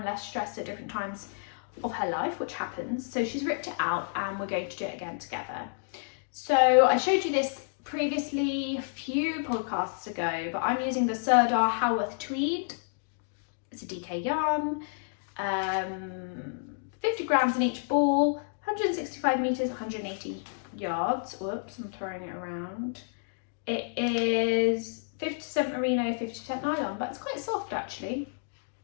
less stressed at different times of her life, which happens. So she's ripped it out and we're going to do it again together. So I showed you this previously a few podcasts ago, but I'm using the Serdar Haworth Tweed. It's a DK yarn, 50 grams in each ball, 165 meters, 180 yards. Whoops, I'm throwing it around. It is 50% merino, 50% nylon, but it's quite soft actually.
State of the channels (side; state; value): right; silent; digital silence